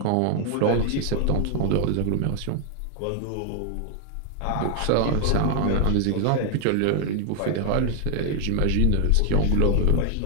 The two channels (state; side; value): different; both; correlation 0.00